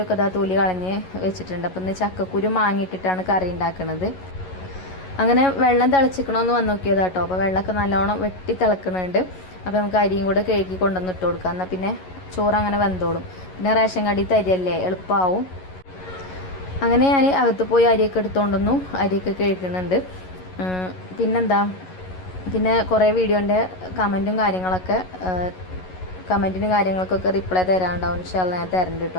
ഒക്കെ ഇതാ തൊലി കളഞ്ഞ് വെച്ചിട്ടുണ്ട്. അപ്പം ഇന്ന് ചക്കക്കുരു മാങ്ങിയിട്ടിട്ടാണ് കറി ഉണ്ടാക്കുന്നത്. അങ്ങനെ വെള്ളം തിളച്ചിക്കണമെന്ന് വന്ന് നോക്കിയത് കേട്ടോ. അപ്പോൾ വെള്ളമൊക്കെ നല്ലോണം വെട്ടി തിളക്കുന്നുണ്ട്. അപ്പോൾ നമുക്ക് അരിയും കൂടെ കഴുകി കൊണ്ടുവന്ന് ഇട്ട് കൊടുക്കാം. എന്നാൽ പിന്നെ ചോറ് അങ്ങനെ വെന്തോളും. പിന്നെ റേഷൻ കടയിൽ അരിയല്ലേ, എളുപ്പമാവും. അങ്ങനെ ഞാൻ അകത്ത് പോയി അരിയൊക്കെ എടുത്തുകൊണ്ടൊന്നു അരിയൊക്കെ കഴുകുന്നുണ്ട്. പിന്നെന്താ, പിന്നെ കുറേ വീഡിയോൻ്റെ കമൻറ്റും കാര്യങ്ങൾക്കൊക്കെ റിപ്ലൈ തരാനുണ്ടാവും. ഇൻഷാല്ലാ ഞാൻ തരണ്ട്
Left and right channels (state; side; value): late; right; 11 ms